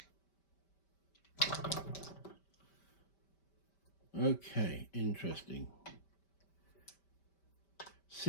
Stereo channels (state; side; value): late; right; 5.1 ms